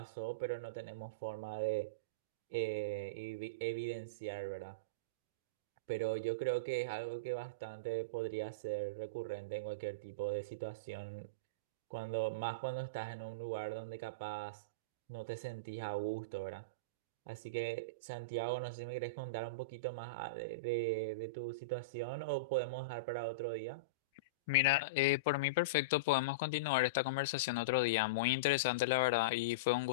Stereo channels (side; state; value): both; normal; correlation -0.12